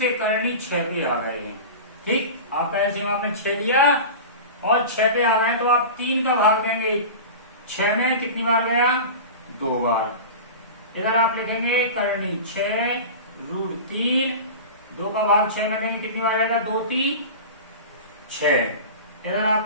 करनी 6 पे आ गए हैं। ठीक, आप ऐसे आपने 6 लिया और 6 पे आ गए तो आप 3 का भाग देंगे 6 में, कितनी बार गया? 2 बार। इधर आप लिखेंगे करनी 6 √3, 2 का भाग 6 में देंगे, कितनी बार आएगा? 2 3 6। इधर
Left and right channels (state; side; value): inverted; both; correlation -0.31